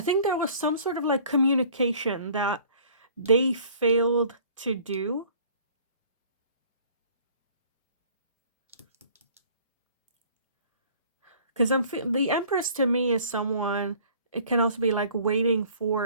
there was some sort of like communication that they failed to do. Because the Empress to me is someone, it can also be like waiting for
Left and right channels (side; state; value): both; inverted; correlation -0.52